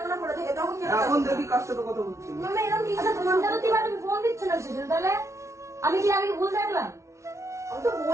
মনে পড়ে থাকে তখন কেন এখন যাবো? দেখি কার সাথে কথা বলছি। মামা এরকম কি? আচ্ছা ফোনটা তো দিবা, তুমি ফোন দিচ্ছ না সেজন্য, তাহলে আমি কি আগে ভুল দেখলাম? আমি তো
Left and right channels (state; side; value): late; left; 0.14 ms